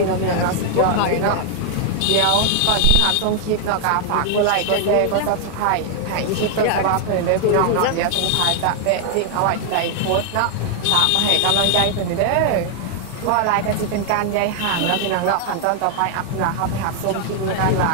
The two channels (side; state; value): both; different; correlation 0.00